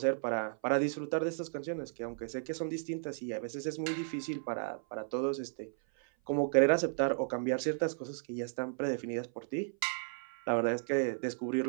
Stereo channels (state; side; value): silent; left; 55 dB below the other